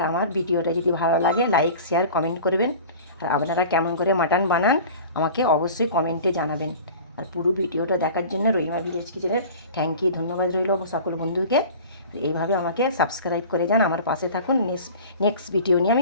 আমার ভিডিওটা যদি ভালো লাগে লাইক শেয়ার কমেন্ট করবেন, আর আপনারা কেমন করে মাটন বানান আমাকে অবশ্যই কমেন্টে জানাবেন। আর পুরো ভিডিওটা দেখার জন্য রহিমা ভিলেজ কিচেনের থ্যাংক ইউ, ধন্যবাদ রইল সকল বন্ধুকে। এইভাবে আমাকে সাবস্ক্রাইব করে যান, আমার পাশে থাকুন, নেক্সট ভিডিও নিয়ে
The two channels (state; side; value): inverted; both; correlation -0.40